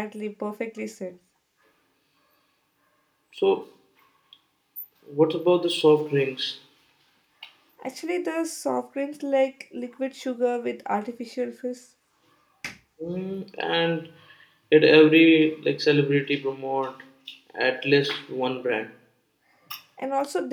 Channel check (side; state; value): both; identical; correlation 1.00